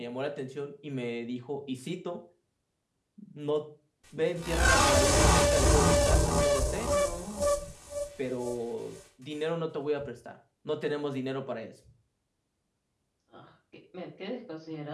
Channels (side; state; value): both; identical; correlation 1.00